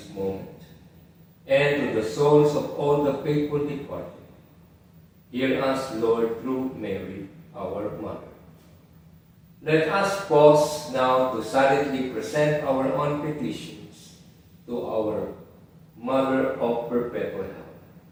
moment, and to the souls of all the faithful departed. Hear us, Lord, through Mary, our Mother. Let us pause now to silently present our own petitions to our Mother of Perpetual Help.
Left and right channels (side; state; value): both; identical; correlation 1.00